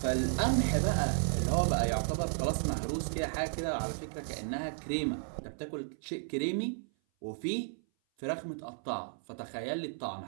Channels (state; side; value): silent; left; 55 dB below the other